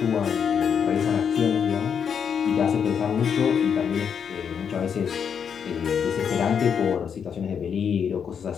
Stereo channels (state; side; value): quieter; right; 7.3 dB